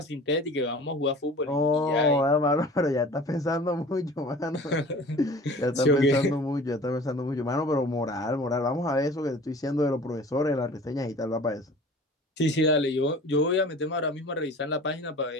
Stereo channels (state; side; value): normal; both; correlation 0.43